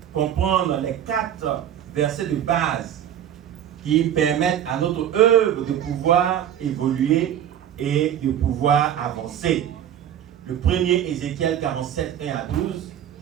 comprendre les 4 versets de base qui permettent à notre œuvre de pouvoir évoluer et de pouvoir avancer. Le premier, Ézéchiel 47, 1 à 12.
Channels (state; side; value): quieter; left; 10.4 dB